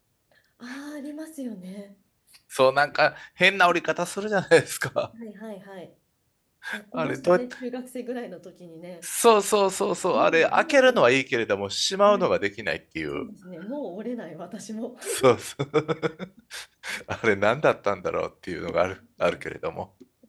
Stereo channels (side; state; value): both; identical; correlation 1.00